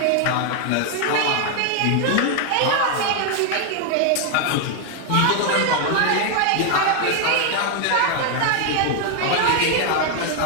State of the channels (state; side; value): different; both; correlation 0.00